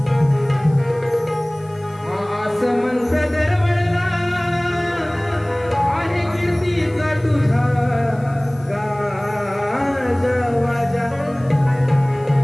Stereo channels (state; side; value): noise; left; hiss, 29 dB below the sound